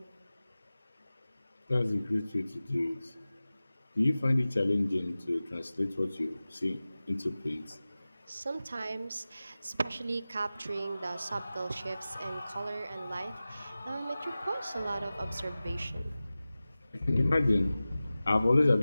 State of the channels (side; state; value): both; inverted; correlation -0.96